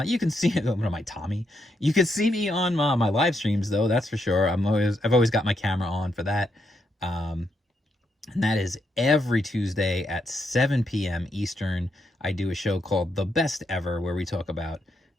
You can see it. What am I, Tommy? You can see me on my live streams, though. That's for sure. I've always got my camera on for that. And that is every Tuesday at 7 p.m. Eastern. I do a show called The Best Ever, where we talk about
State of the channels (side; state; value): both; normal; correlation 0.79